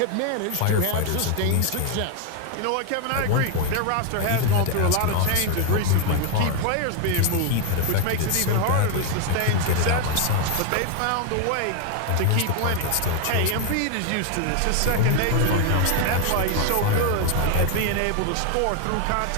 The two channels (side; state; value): both; different; correlation 0.01